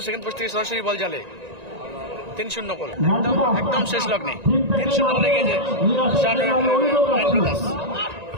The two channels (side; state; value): left; late; 1.9 ms